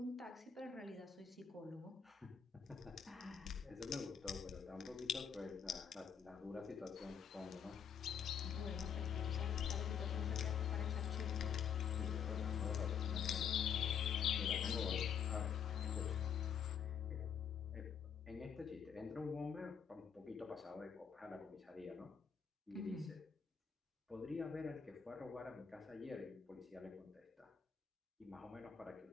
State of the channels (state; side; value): quieter; right; 7.6 dB